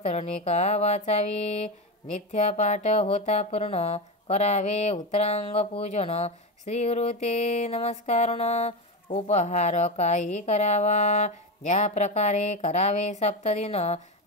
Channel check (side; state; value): both; normal; correlation 0.16